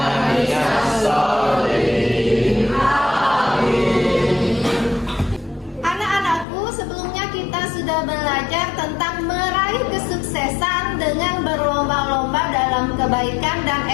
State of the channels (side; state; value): right; drops out; at 6.5 s